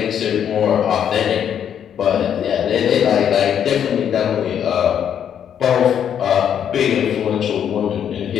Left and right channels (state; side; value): quieter; right; 8.9 dB